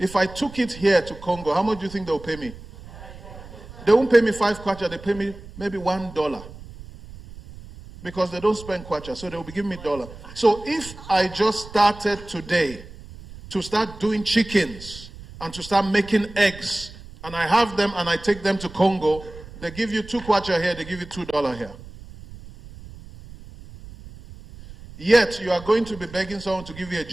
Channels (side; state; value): right; noise; rumble, 16 dB below the sound